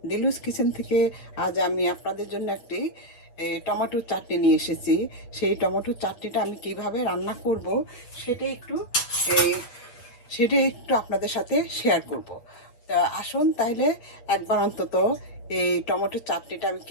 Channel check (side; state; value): right; late; 8.3 ms